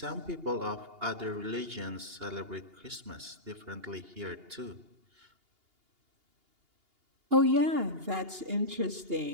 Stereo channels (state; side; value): late; left; 2.8 ms